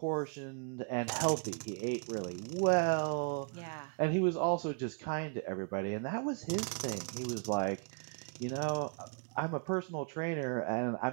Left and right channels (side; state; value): left; quieter; 38.8 dB